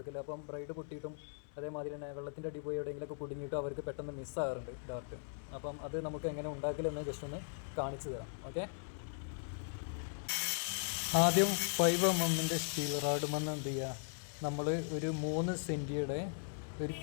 അപ്പം ബ്രൈഡ് പൊട്ടിയിട്ടും അതേമാതിരി തന്നെ വെള്ളത്തിൻ്റെ അടി പോയി എവിടെയെങ്കിലുമൊക്കെ കുടുങ്ങിയിട്ടും അവർക്ക് പെട്ടെന്ന് മിസ്സാകാറുണ്ട് ഡാർട്ട്. അപ്പം അത് നമുക്ക് എങ്ങനെ ഉണ്ടാക്കലെന്ന് ജസ്റ്റ് ഒന്ന് കാണിച്ചു തരാം. ഓക്കെ, ആദ്യം 5mm സ്റ്റീൽ റാഡ് മണ്ണ് എന്ത് ചെയ്യുക, നമ്മൾ ഒരു 3 സെൻറ്റിയുടെ ഒരു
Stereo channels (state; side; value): silent; right; 52 dB below the other